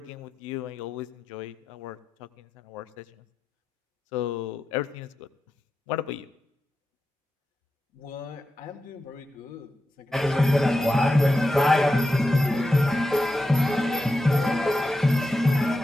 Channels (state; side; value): normal; both; correlation 0.90